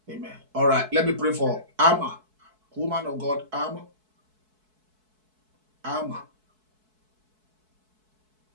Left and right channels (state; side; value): late; left; 4.6 ms